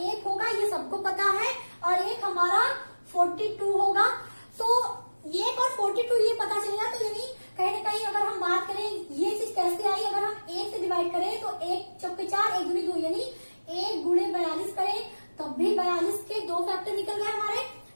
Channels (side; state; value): both; inverted; correlation -1.00